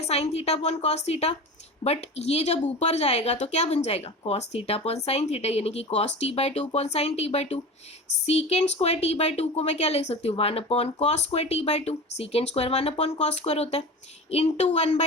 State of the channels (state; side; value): normal; both; correlation 0.32